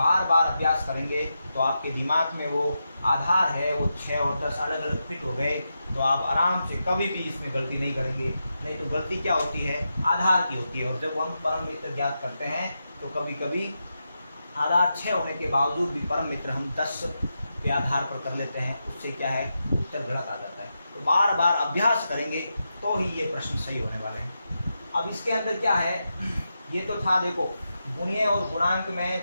बार अभ्यास करेंगे तो आपके दिमाग में वो आधार है वो 6 और 10 अलग अलग फिट हो गए, तो आप आराम से कभी भी इसमें गलती नहीं करेंगे। नहीं तो गलती क्या होती है, आधार की होती है। और जब हम परम मित्र ज्ञात करते हैं तो कभी कभी आधार 6 होने के बावजूद भी परम मित्र हम 10 के आधार पर कर लेते हैं, उससे क्या है, उत्तर गलत आ जाता है। तो बार बार अभ्यास करेंगे तो ही ये प्रश्न सही होने वाले हैं। अब इसके अंदर क्या है, ये तो था देखो गुणीय और गुणांक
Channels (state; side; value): inverted; both; correlation -0.87